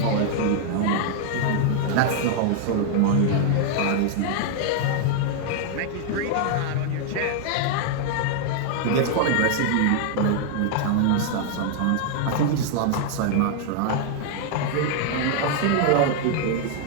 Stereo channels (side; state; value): both; different; correlation 0.00